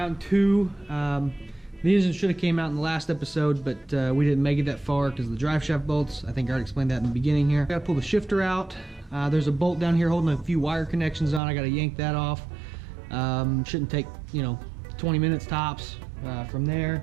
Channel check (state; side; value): drops out; left; at 11.4 s